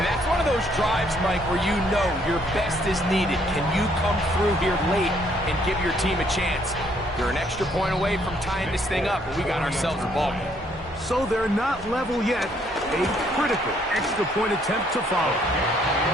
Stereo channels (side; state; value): both; normal; correlation 0.67